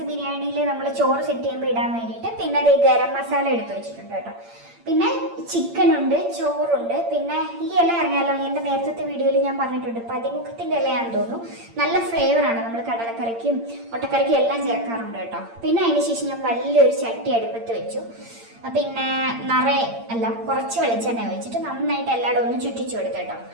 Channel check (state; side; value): late; left; 8.7 ms